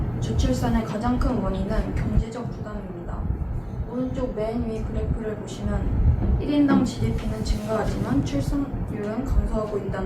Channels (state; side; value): identical; both; correlation 1.00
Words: 저출산의 가장 큰 원인은 경제적 부담입니다. 오른쪽 맨 위 그래프를 보시면 1인당 GDP는 증가하지만 출산율은 감소하고